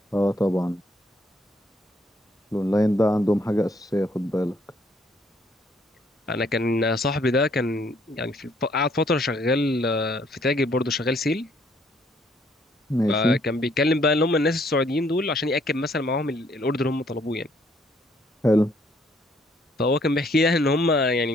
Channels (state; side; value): normal; both; correlation 0.66